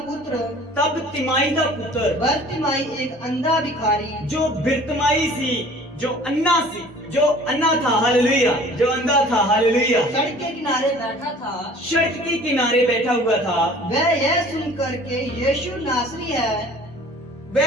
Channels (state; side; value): normal; both; correlation 0.48